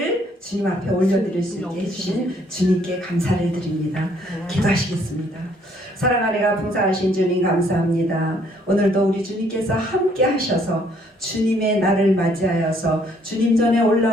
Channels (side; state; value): both; normal; correlation 0.65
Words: 주님 앞에 올려드릴 수 있게 해주신 주님께 감사를 드립니다. 기도하시겠습니다. 사랑하리가 풍성하신 주님 감사합니다. 오늘도 우리 주님께서 함께 하셔서 주님의 날을 맞이하여서 주님 전에